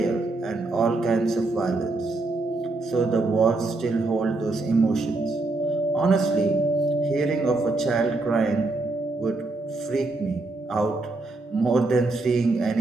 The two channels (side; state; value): left; quieter; 3.1 dB